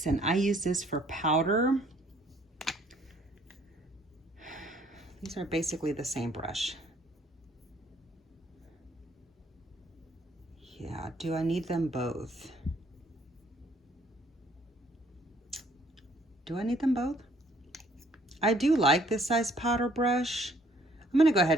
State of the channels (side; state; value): both; normal; correlation 0.62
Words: and I use this for powder. These are basically the same brush. Yeah, do I need them both? Do I need them both? I do like this size powder brush. I'm gonna go